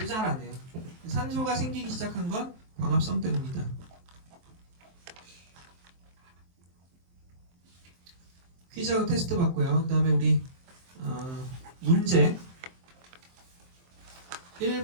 잘 안 해요. 산소가 생기기 시작한 건 광합성 때문이다. 퀴즈하고 테스트 봤고요. 그 다음에 우리 문제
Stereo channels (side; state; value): left; late; 23 ms